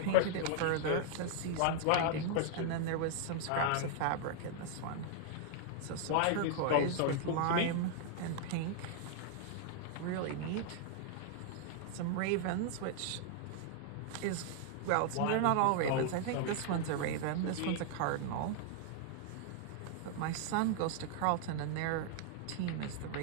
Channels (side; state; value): both; different; correlation 0.00